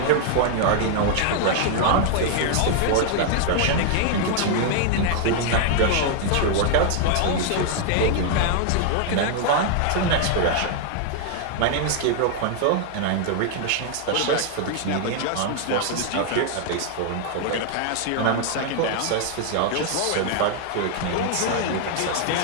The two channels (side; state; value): both; different; correlation 0.00